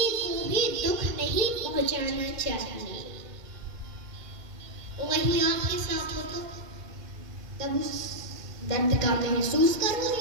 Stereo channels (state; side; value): late; left; 2.1 ms